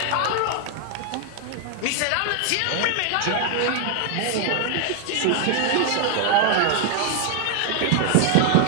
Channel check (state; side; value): different; both; correlation 0.01